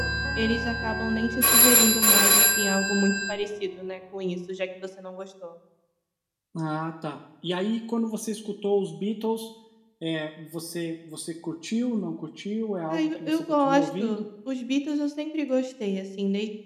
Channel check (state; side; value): identical; both; correlation 1.00